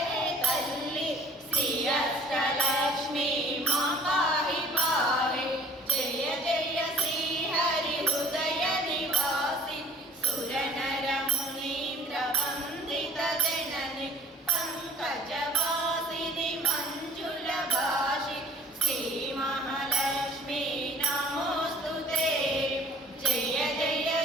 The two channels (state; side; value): normal; both; correlation 0.49